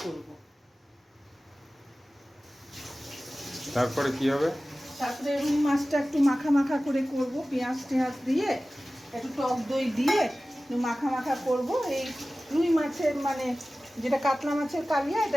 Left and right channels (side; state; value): both; normal; correlation 0.96